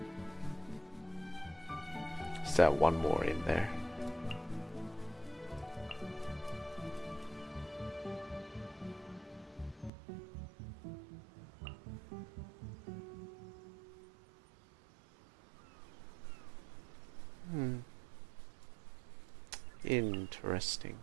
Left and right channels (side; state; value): left; drops out; at 9.9 s